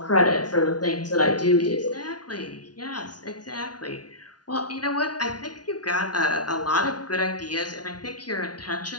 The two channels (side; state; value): right; late; 0.69 ms